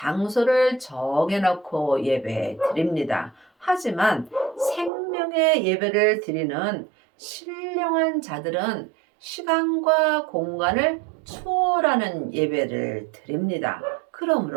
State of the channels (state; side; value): drops out; left; at 4.9 s